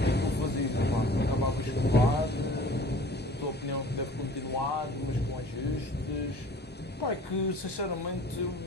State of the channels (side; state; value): both; normal; correlation 0.46